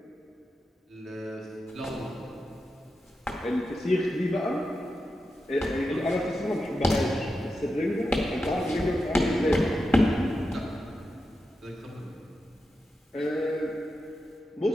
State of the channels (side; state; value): both; normal; correlation 0.89